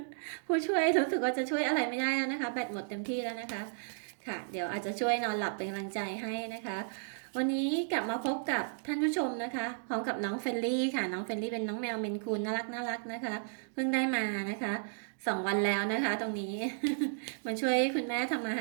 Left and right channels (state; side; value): silent; left; digital silence